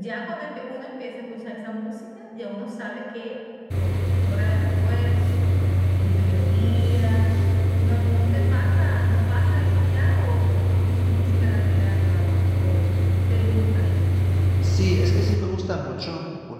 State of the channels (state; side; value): identical; both; correlation 1.00